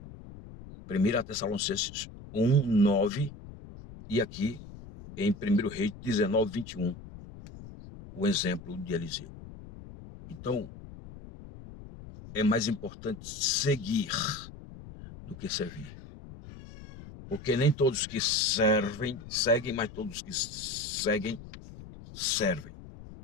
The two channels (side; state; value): left; noise; rumble, 15 dB below the sound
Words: 1 Tessalonicenses 1, 9, e aqui em 1 Reis 19, 21, o exemplo de Eliseu. Então, é mais importante seguir do que servir. Porque nem todos que servem, seguem, mas todos que seguem, servem.